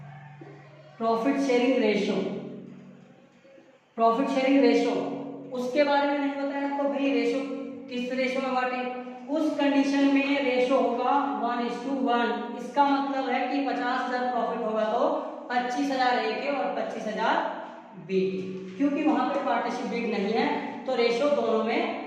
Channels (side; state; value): both; identical; correlation 1.00